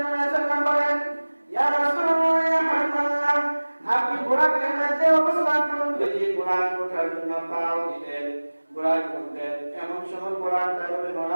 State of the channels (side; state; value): both; inverted; correlation -1.00